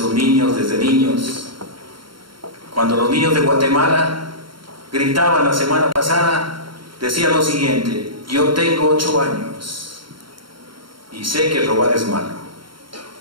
niños, desde niños, cuando los niños de Guatemala gritaban la semana pasada, decían lo siguiente: yo tengo 8 años y sé que robar es malo.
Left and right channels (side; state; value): left; late; 0.73 ms